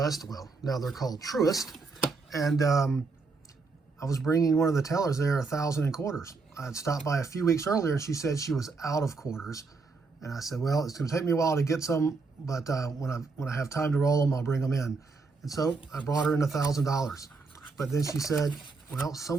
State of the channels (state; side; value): quieter; left; 4.2 dB